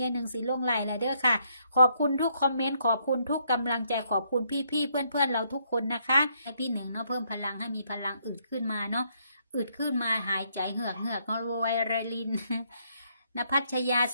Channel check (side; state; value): both; inverted; correlation -0.72